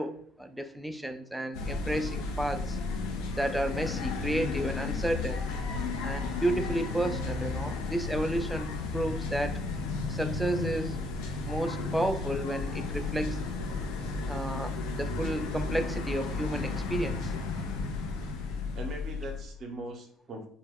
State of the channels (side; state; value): both; normal; correlation 0.71